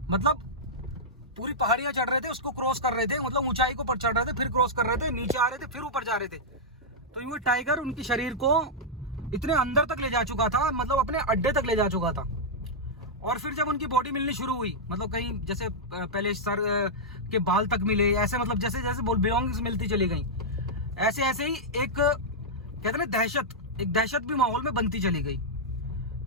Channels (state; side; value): normal; both; correlation -0.07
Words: मतलब पूरी पहाड़ियां चढ़ रहे थे, उसको क्रॉस कर रहे थे, मतलब ऊंचाई को पर चढ़ रहे थे, फिर क्रॉस कर रहे थे, नीचे आ रहे थे, फिर ऊपर जा रहे थे। तो ये टाइगर उनके शरीर को इतने अंदर तक ले जा चुका था, मतलब अपने अड्डे तक ले जा चुका था। और फिर जब उनकी बॉडी मिलनी शुरू हुई, मतलब कहीं जैसे पहले सर के बाल तक मिले, ऐसे मतलब जैसे जैसे बिलोंगिंग्स मिलती चली गई, ऐसे ऐसे ही एक कहते हैं दहशत भी माहौल में बनती चली गई।